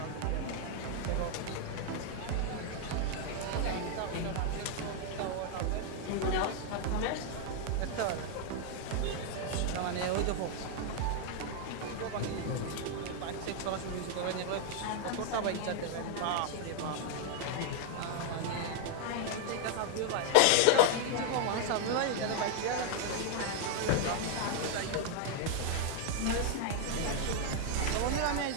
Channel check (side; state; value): both; different; correlation 0.00